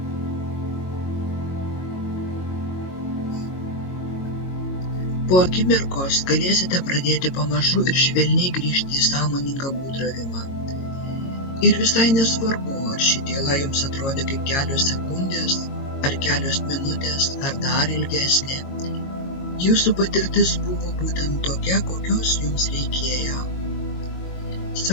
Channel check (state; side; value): late; right; 22 ms